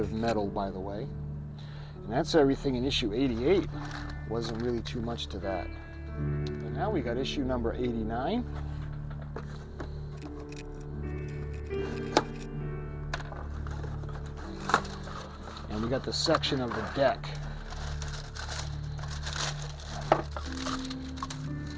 metal, by the way. And that's everything in issue 88. Wasn't really too much to that. And now we got issue number 89. And we got the section of the deck.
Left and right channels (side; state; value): both; identical; correlation 1.00